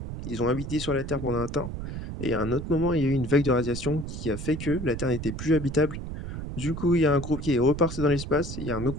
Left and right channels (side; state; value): right; noise; rumble, 7 dB below the sound